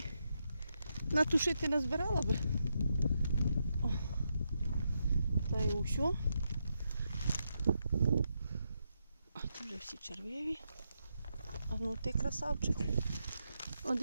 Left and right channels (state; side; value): inverted; both; correlation -0.83